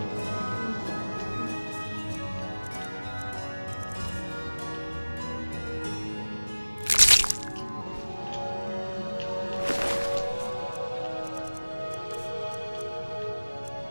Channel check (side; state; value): both; inverted; correlation -1.00